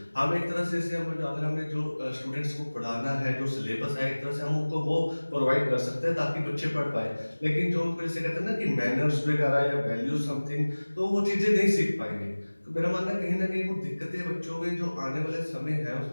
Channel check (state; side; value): inverted; both; correlation -1.00